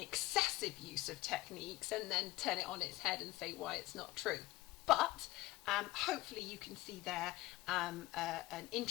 use of techniques and then turn it on its head and say why it's not true. But hopefully you can see there an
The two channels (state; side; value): quieter; right; 18.3 dB